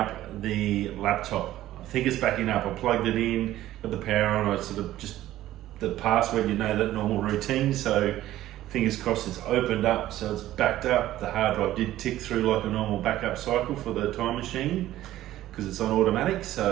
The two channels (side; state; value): left; quieter; 14.2 dB